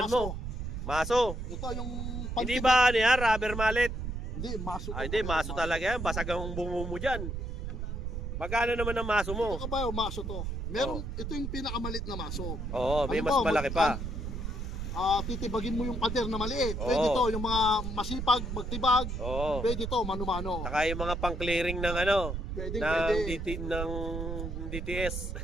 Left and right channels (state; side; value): noise; right; rumble, 4 dB below the sound